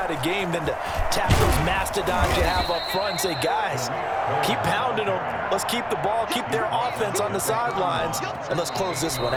a game than to tap those mastodons you have up front and say, guys, keep pounding them. Let's keep the ball, keep their offense on the sidelines, and let's close this one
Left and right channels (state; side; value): identical; both; correlation 1.00